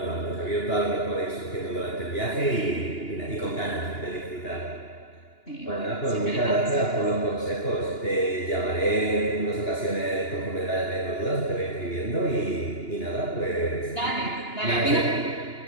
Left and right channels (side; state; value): right; late; 2.9 ms